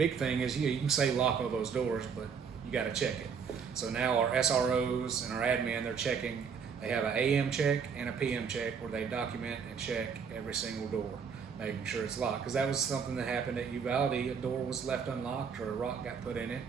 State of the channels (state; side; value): quieter; left; 6.4 dB